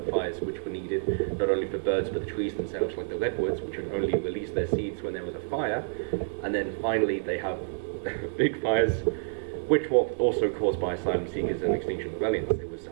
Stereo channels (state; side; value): silent; left; 59 dB below the other